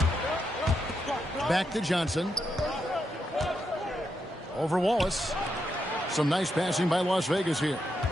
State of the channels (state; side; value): normal; both; correlation 0.83